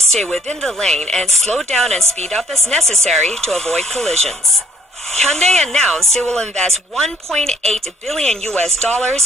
within the lane and slow down and speed up as necessary to avoid collisions. Hyundai announced it will invest $1.8 billion in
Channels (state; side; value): normal; both; correlation 0.62